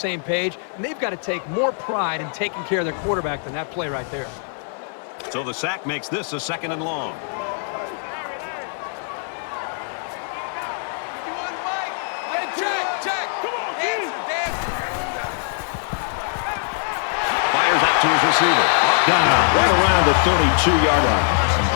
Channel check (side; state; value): right; silent; 64 dB below the other